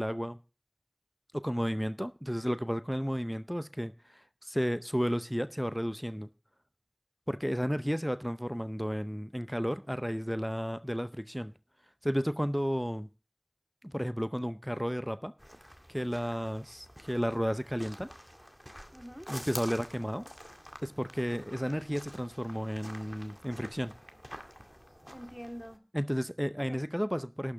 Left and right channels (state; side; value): identical; both; correlation 1.00